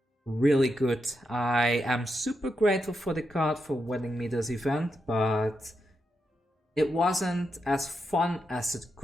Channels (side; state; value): both; normal; correlation 0.85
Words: really good. I am super grateful for the card for winning me this event, but it wasn't as fun as it